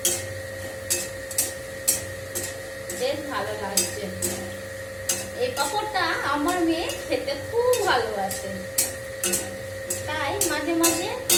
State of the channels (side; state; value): both; identical; correlation 1.00